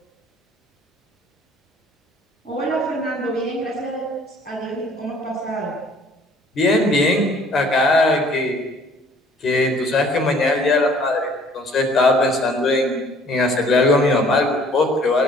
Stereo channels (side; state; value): both; normal; correlation 0.56